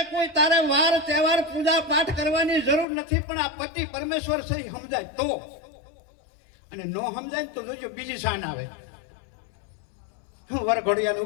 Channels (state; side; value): drops out; right; at 2.9 s